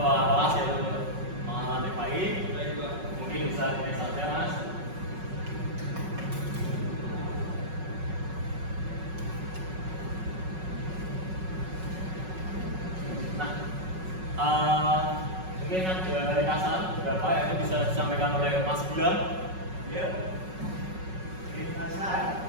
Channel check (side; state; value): left; late; 5.4 ms